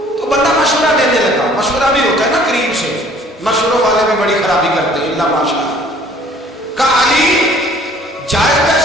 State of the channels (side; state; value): both; normal; correlation 0.55